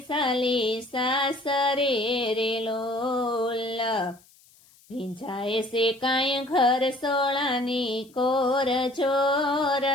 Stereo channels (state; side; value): noise; left; hiss, 29 dB below the sound